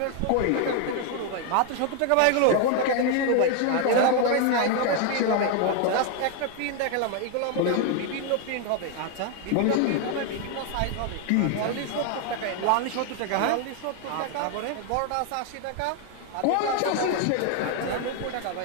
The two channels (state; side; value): different; both; correlation 0.00